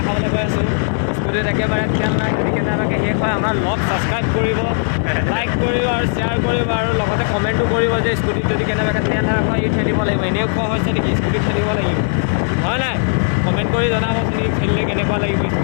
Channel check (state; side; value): silent; right; digital silence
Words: খাবলৈ গৈ আছো স্কুটিত একেবাৰে খেল নাই যদি কেনেবাকৈ শেষ হয় আমাৰ লগ ছাবস্ক্ৰাইব কৰিব লাইক কৰিব আৰু শ্বেয়াৰ কৰিব আৰু লগতে কমেণ্টো কৰিব যে স্কুটিত যদি কেনেবাকৈ তেল হয় ই ঠেলিব লাগিব এনেও কোৱা হৈছে নেকি স্কুটিত ঠেলিব লাগিব হয় নাই কমেণ্ট কৰি জনাব আপুনি খেলিলে কেনেকুৱা লাগিব